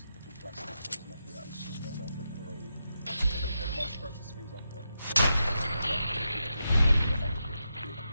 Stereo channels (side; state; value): both; inverted; correlation -0.87